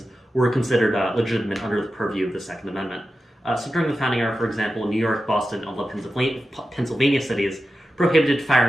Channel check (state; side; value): normal; both; correlation 0.91